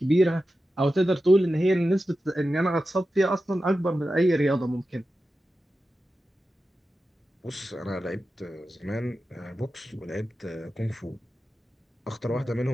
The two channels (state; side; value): normal; both; correlation 0.92